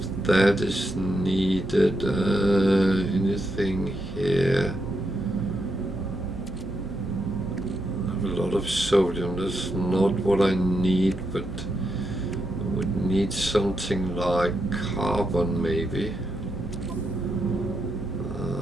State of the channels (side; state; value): both; normal; correlation 0.82